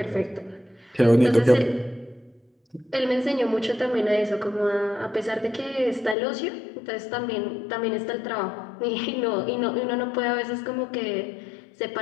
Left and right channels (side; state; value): right; drops out; at 6.2 s